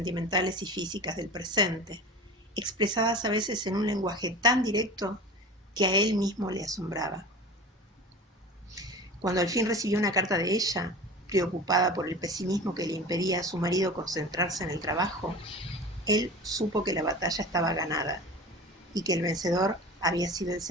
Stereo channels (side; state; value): both; normal; correlation 0.35